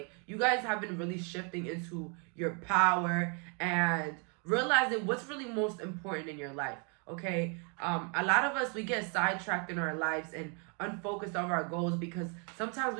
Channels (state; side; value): quieter; left; 36.9 dB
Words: you guys have been really shifting into your power and realizing what's really most important in your life. Okay, a lot of us, we get sidetracked in our lives and unfocused on our goals because sometimes